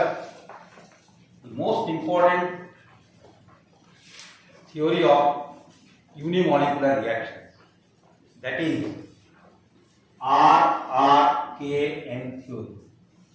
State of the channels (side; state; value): both; identical; correlation 1.00